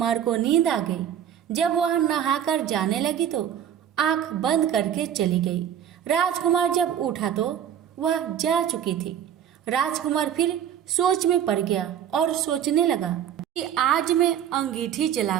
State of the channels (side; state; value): left; quieter; 9.6 dB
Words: को नींद आ गई। जब वह नहाकर जाने लगी तो आंख बंद करके चली गई। राजकुमार जब उठा तो वह जा चुकी थी। राजकुमार फिर सोच में पड़ गया और सोचने लगा कि आज मैं अंगीठी